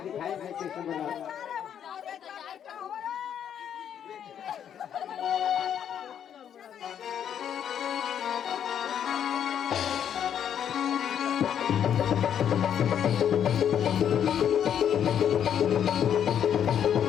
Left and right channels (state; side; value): quieter; right; 9.1 dB